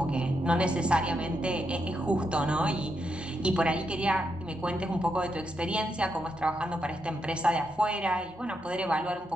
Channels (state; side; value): normal; both; correlation 0.82